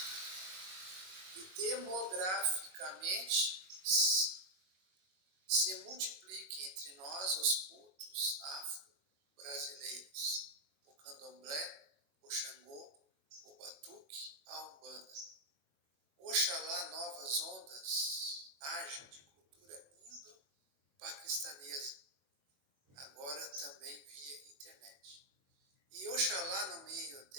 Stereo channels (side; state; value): left; late; 21 ms